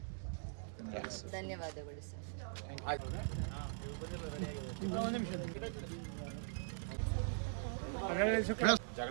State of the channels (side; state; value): left; silent; digital silence